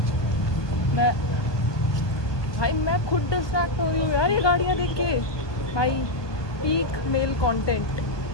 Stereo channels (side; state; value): right; late; 1.2 ms